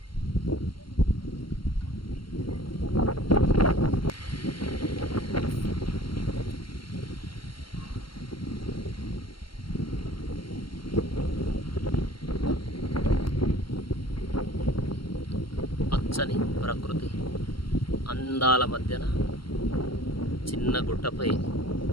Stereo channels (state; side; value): late; right; 0.73 ms